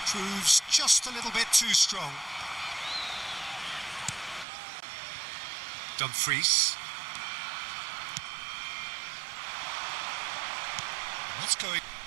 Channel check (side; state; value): left; drops out; at 4.5 s